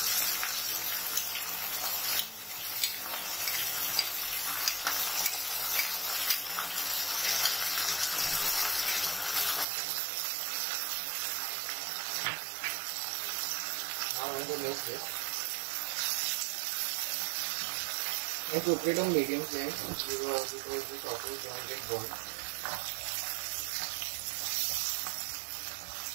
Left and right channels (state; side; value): drops out; left; at 9.7 s